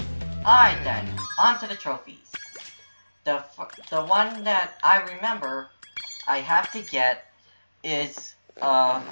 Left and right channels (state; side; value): inverted; both; correlation -1.00